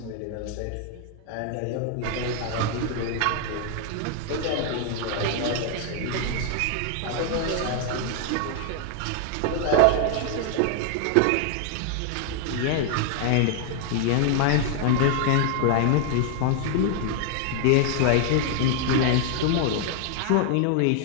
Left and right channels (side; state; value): both; different; correlation 0.00